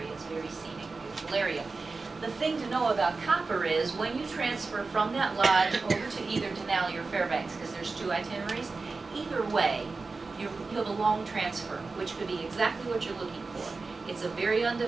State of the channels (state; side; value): quieter; left; 4.0 dB